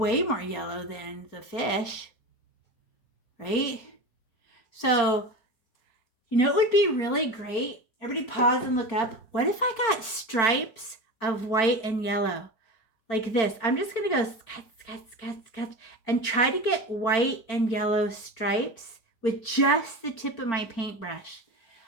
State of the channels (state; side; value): late; right; 4.4 ms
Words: more yellow than the fish, right? So, you know, it would be really great. Everybody pause and look up. What if I got stripes of white and yellow like this? I'm just going to go sketch and try to get white and yellow stripes with just the tip of my paintbrush.